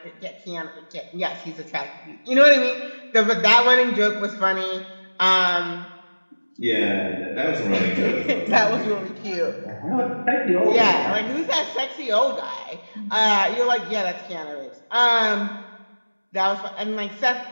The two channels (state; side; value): inverted; both; correlation -1.00